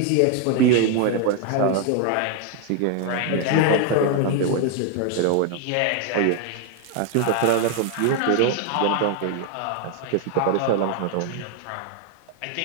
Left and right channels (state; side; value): different; both; correlation 0.01